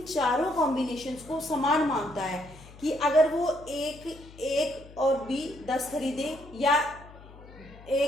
चारों कॉम्बिनेशंस को समान मानता है कि अगर वो एक और बी 10 खरीदे, या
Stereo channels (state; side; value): noise; left; hum, 20 dB below the sound